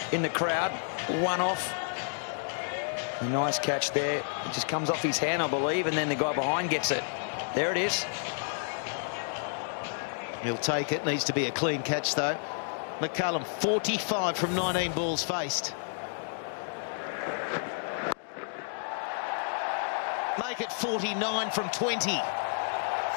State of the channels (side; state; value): right; silent; digital silence